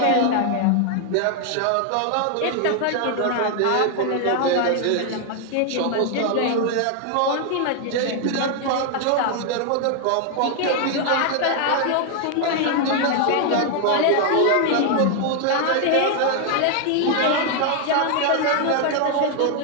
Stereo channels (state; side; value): different; both; correlation 0.00